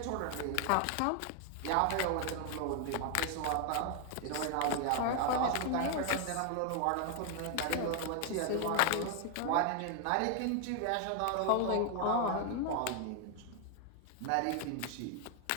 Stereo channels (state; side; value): different; both; correlation 0.00